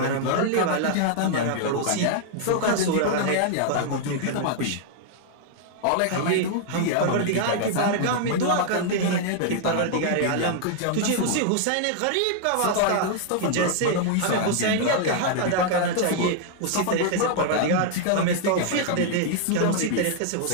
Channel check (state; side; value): different; both; correlation 0.00